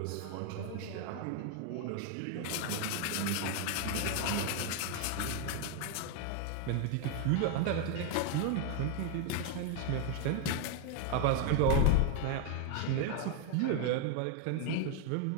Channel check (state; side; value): different; both; correlation 0.01